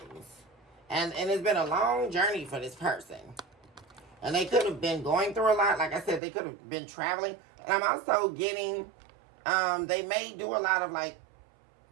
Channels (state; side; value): drops out; left; at 6.2 s